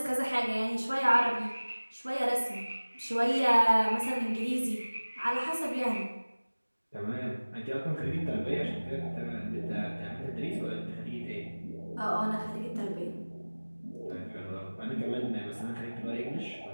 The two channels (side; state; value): both; inverted; correlation -1.00